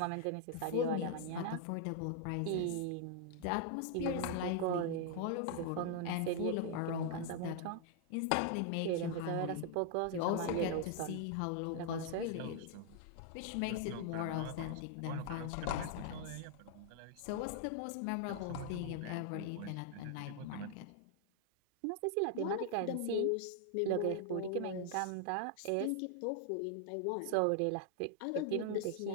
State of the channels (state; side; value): different; both; correlation 0.00